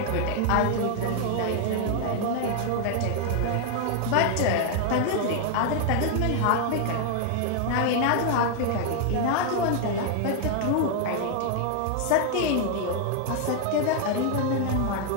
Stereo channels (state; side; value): different; both; correlation 0.00